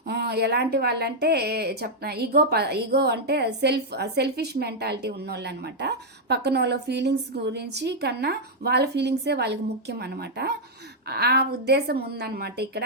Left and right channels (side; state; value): both; normal; correlation -0.04